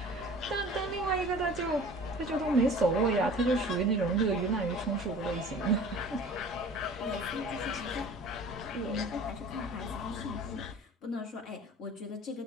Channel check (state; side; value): normal; both; correlation 0.44